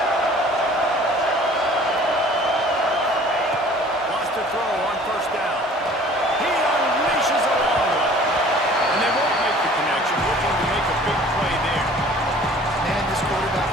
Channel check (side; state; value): both; normal; correlation 0.50